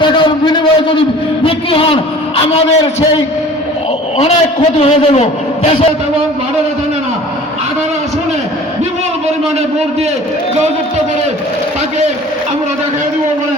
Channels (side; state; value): both; normal; correlation 0.45